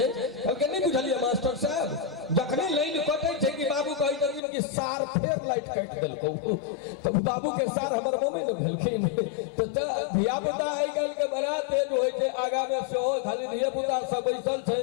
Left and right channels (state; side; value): drops out; right; at 4.4 s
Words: कहलकै नहीं बुझलिए मास्टर साहब जखने लाइन कटै छै कि बाबू कहै छथिन कि सार फेर लाइट काट देलकौ तो बाबू के सार हमर मम्मी ने भेलखिन। तो धिया पुता आइ काल्हि के बड़ा तेज होइ छै आगा में सेहो खाली धिया पुता सब बैसल